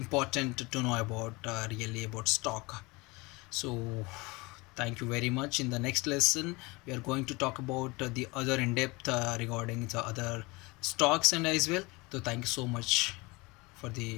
to know about really about stock. So thank you very much. In the next lesson, we are going to talk about the other in depth regarding the other stocks and as well. So thank you so much for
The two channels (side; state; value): right; quieter; 24.7 dB